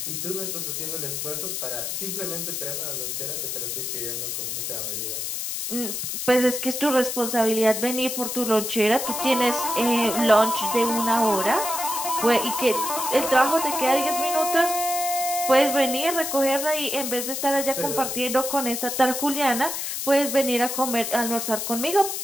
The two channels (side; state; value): left; noise; hiss, 3 dB below the sound